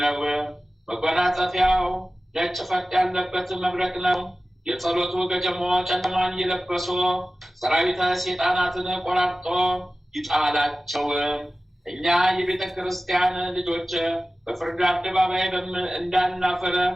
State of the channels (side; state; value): both; normal; correlation 0.96